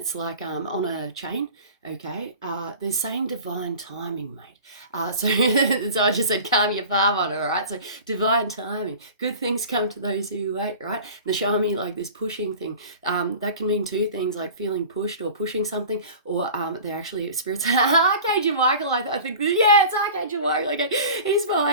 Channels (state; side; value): inverted; both; correlation -0.39